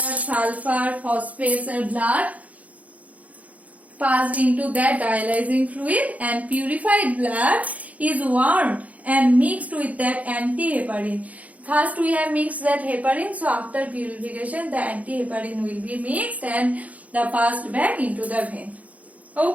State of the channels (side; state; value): left; late; 0.070 ms